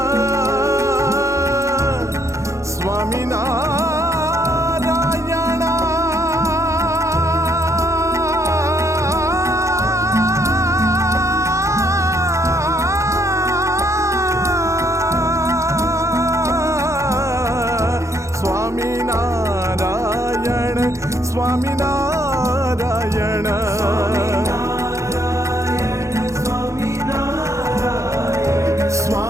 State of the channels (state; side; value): late; left; 0.15 ms